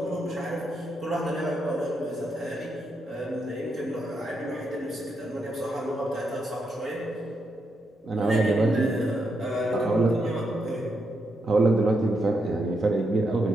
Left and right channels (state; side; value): normal; both; correlation 0.81